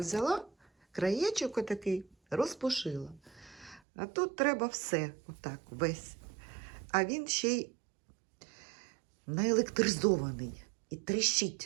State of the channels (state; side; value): drops out; left; at 3.8 s